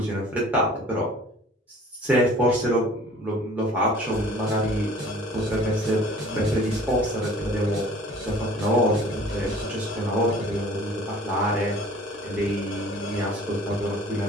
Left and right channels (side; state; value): both; normal; correlation 0.49